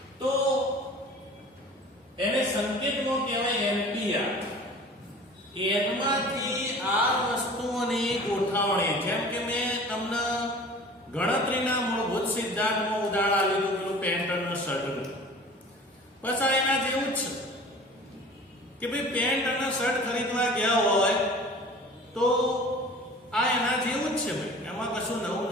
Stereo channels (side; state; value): both; normal; correlation 0.43